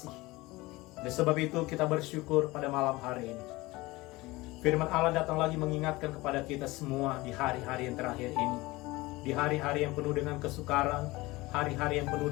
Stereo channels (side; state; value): right; quieter; 20.9 dB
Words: Oleh sebab itu kita bersyukur pada malam hari ini. Firman Allah datang lagi mengingatkan kepada kita semua di hari-hari yang terakhir ini. Di hari-hari yang penuh dengan kesukaran, hari-hari yang penuh